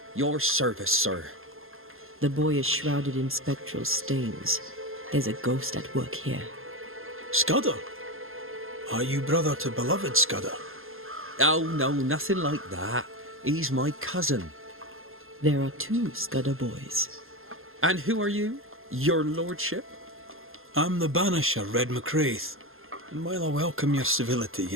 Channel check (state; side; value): late; left; 0.60 ms